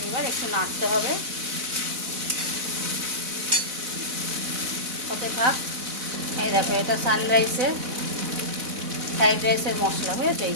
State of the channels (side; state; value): left; late; 4.0 ms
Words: এবার একটু নাড়তে হবে, হতে থাক। এই দেখো, এটা সানরাইসের ফ্রাইড রাইসের মশলা, বুঝেছো? এই